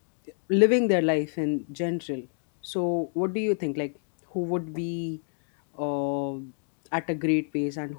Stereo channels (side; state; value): right; silent; 59 dB below the other